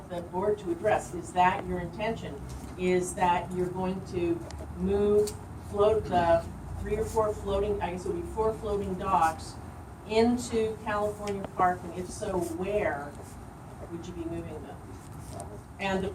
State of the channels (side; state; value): both; identical; correlation 1.00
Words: the board to address. Is that your intention? Is that you're going to move the 3 or 4 floating, I guess it would be 4 floating docks into California Park, and if so, where would you be moving them? And the